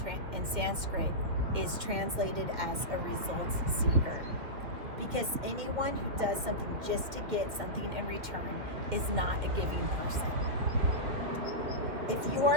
Sanskrit is translated as a results seeker. Because anyone who does something just to get something in return is not a giving person. If you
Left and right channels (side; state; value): left; late; 2.6 ms